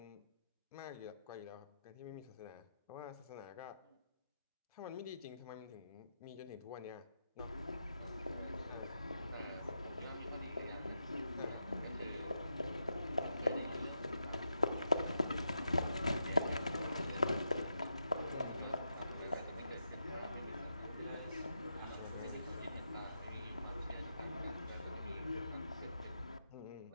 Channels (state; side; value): inverted; both; correlation -0.85